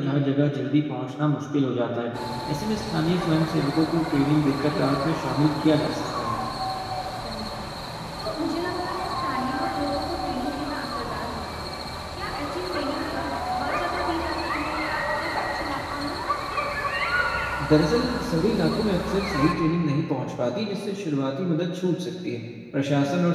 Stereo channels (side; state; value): both; identical; correlation 1.00